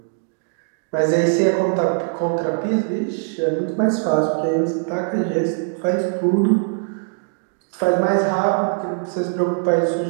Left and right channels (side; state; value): left; silent; 61 dB below the other